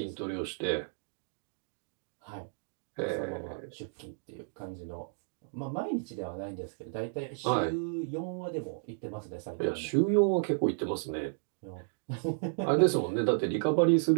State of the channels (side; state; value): left; silent; digital silence